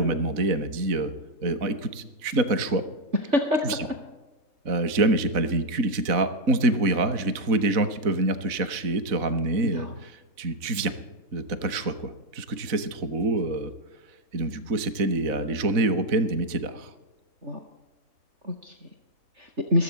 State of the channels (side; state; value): left; late; 4.0 ms